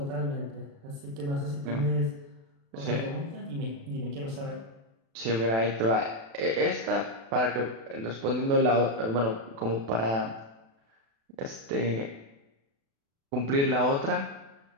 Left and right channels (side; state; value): left; late; 36 ms